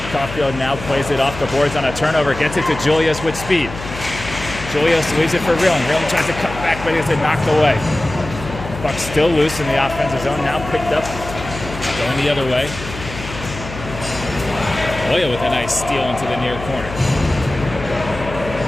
Caulfield now plays it off the boards on a turnover. Gets it to Julius with speed. Julius leaves it for Reeling. Reeling tries to cut back, but he gets it knocked away. Puck still loose in the offensive zone. Now picked up. Going the other way. Loya with a nice steal into the near corner.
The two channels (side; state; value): left; noise; hum, 11 dB below the sound